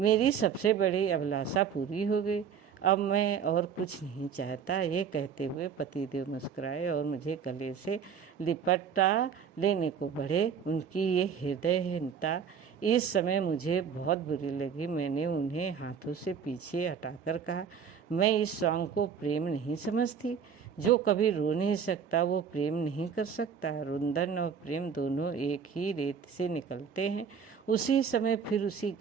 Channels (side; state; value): left; quieter; 7.0 dB